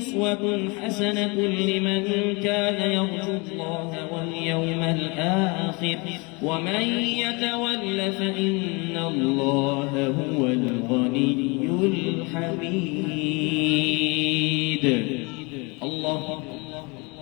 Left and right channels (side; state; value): right; quieter; 28.5 dB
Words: حسنة لمن كان يرجو الله واليوم الآخر ومن يتول فإن الله هو الغني الحميد الله